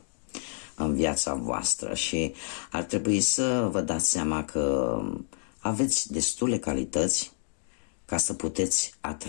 în viața voastră și ar trebui să vă dați seama că aveți destule calități ca să puteți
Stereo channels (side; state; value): right; silent; digital silence